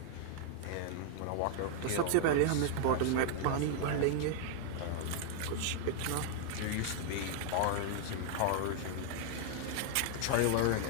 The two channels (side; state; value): both; different; correlation -0.01